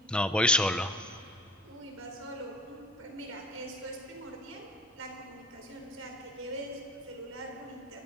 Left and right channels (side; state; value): both; normal; correlation 0.47